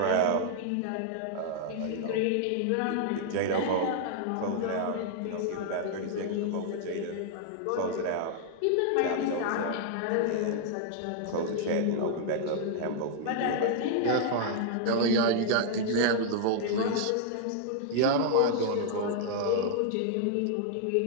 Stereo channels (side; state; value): both; different; correlation -0.01